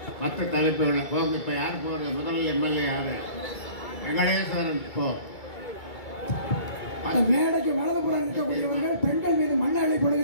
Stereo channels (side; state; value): right; late; 2.3 ms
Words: மற்ற தலைப்புகளை போங்க. இப்போ யார் போகிறது? முதல் எம்எல்ஏ யார்? வெங்கடேஸ்வரன். இப்போ மேடைக்கு வலதுபுறம் இருக்கக்கூடியவர்கள் பெண்கள் மீது மண்ணை